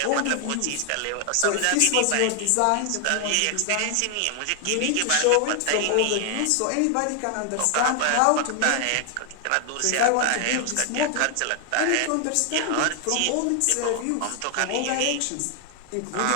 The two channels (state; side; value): different; both; correlation 0.00